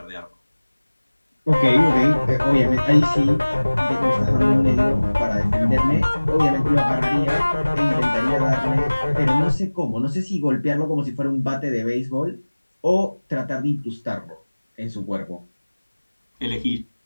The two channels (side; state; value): both; inverted; correlation -1.00